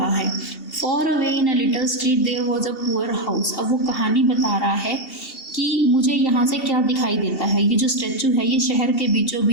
है। Far away in a little street there was a poor house. अब वो कहानी बता रहा है कि मुझे यहाँ से क्या दिखाई देता है। ये जो स्टैचू है ये शहर के बीचों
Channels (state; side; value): late; right; 2.7 ms